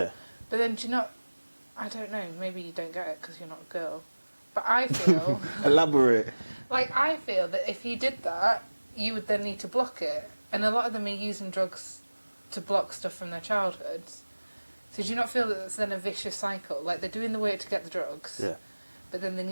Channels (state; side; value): inverted; both; correlation -1.00